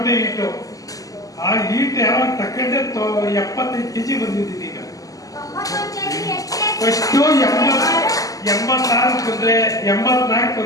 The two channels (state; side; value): late; right; 0.17 ms